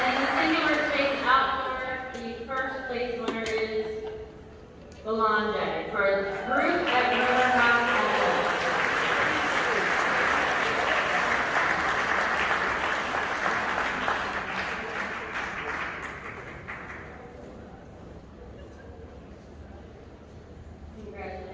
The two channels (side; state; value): both; identical; correlation 1.00